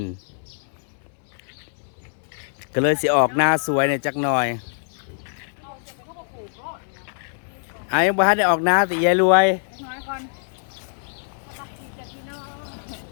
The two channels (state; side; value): silent; right; digital silence